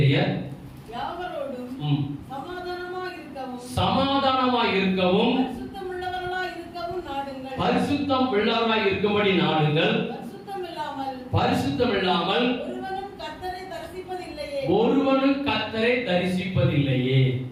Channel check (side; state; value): both; identical; correlation 1.00